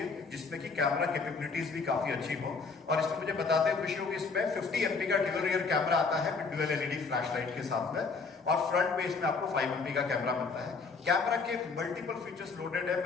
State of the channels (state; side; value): quieter; right; 4.6 dB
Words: जिसमें कि कैमरा कैपेबिलिटीज भी काफी अच्छी हो। और इसमें मुझे बताते हुए खुशी होगी, इसमें 50 MP का ड्यूअल रियर कैमरा आता है with dual LED flash light के साथ में, और फ्रंट में इसमें आपको 5 MP का कैमरा मिलता है। कैमरा के मल्टीपल फीचर्स लोडेड है,